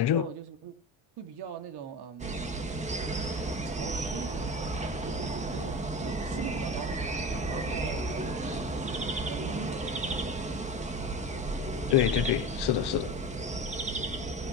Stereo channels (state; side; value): normal; both; correlation 0.29